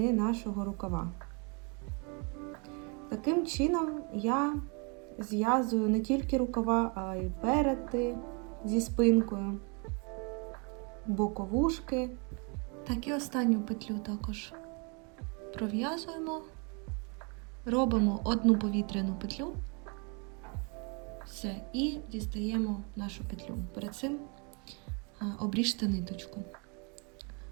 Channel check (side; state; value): left; quieter; 33.8 dB